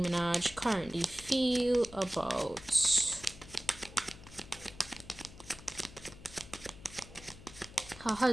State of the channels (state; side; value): noise; left; hum, 17 dB below the sound